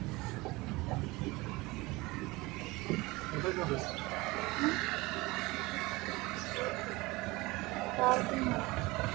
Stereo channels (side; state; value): left; quieter; 22.2 dB